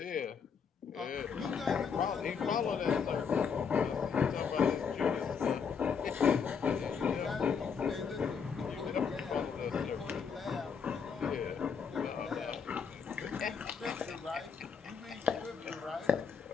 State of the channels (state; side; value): quieter; right; 6.3 dB